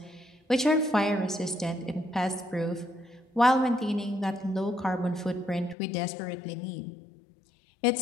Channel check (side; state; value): right; drops out; at 5.8 s